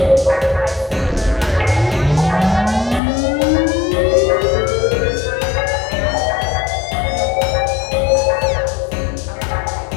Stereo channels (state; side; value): drops out; right; at 3.0 s